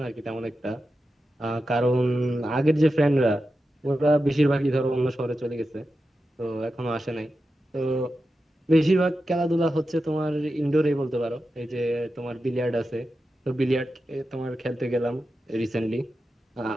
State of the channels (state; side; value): normal; both; correlation 0.90